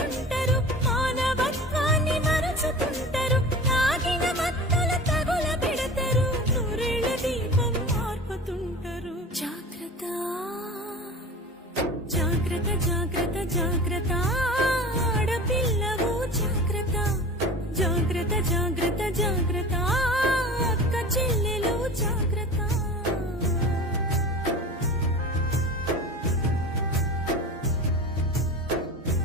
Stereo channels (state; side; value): normal; both; correlation 0.36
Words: మానవత్వాన్ని మరచుతుంటారు తాగిన మత్తుల తగుల పెడతారు నూరేళ్ల దీపం మార్పుతుంటారు జాగ్రత్త జాగ్రత్త జాగ్రత్త జాగ్రత్త ఆడపిల్లవు జాగ్రత్త జాగ్రత్త జాగ్రత్త జాగ్రత్త అక్క చెల్లెలు జాగ్రత్త